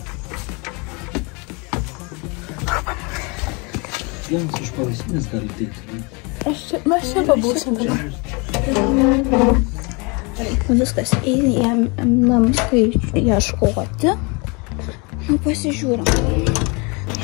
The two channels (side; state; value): right; quieter; 30.0 dB